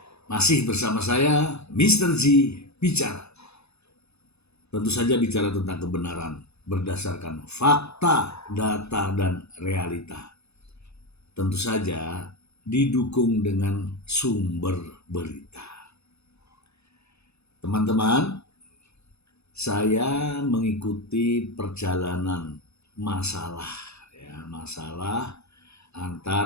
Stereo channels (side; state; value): right; late; 0.79 ms